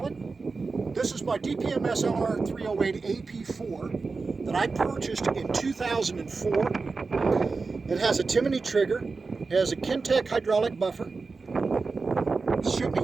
This is my DPM SLR 308 AP4 that I purchased in 2004. It has a Timney trigger, it has a Kintec hydraulic buffer, it's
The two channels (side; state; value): left; quieter; 4.2 dB